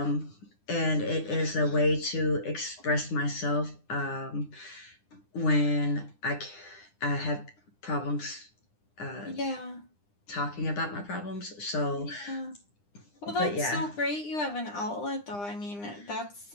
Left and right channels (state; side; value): late; right; 9.9 ms